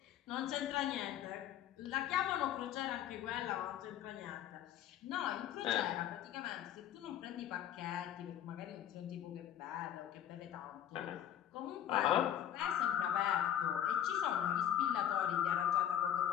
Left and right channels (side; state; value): right; quieter; 10.7 dB